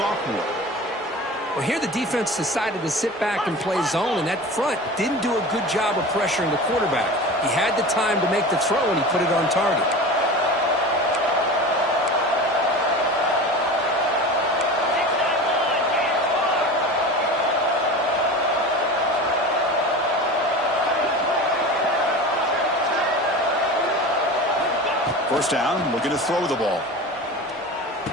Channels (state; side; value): normal; both; correlation 0.33